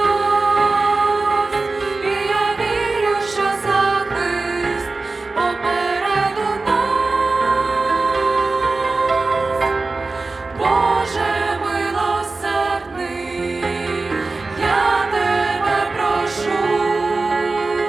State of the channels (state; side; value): quieter; left; 3.6 dB